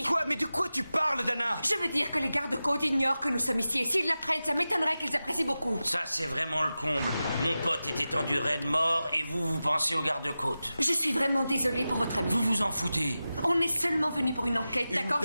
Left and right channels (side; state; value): both; inverted; correlation -0.94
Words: Quoi? Mais de quoi tu parles, Dana? Je veux dire que les gardes-côtes ignorent que nous sommes ici. Et s'ils l'apprennent, ça m'étonnerait qu'ils apprécient beaucoup. Ça, c'est vraiment le comble. Mon pote est étendu raide mort et vous pensez aux gardes-côtes. Je suis vraiment désolée pour votre ami. Vous vous en foutez. On est seulement venu pour une enquête, Une d'accord?